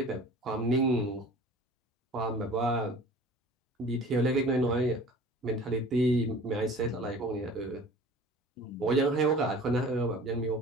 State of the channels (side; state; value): both; normal; correlation 0.44